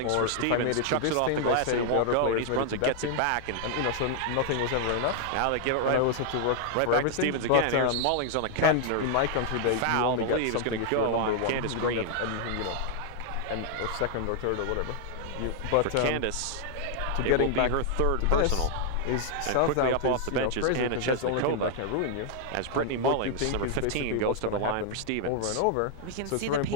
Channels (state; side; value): different; both; correlation 0.00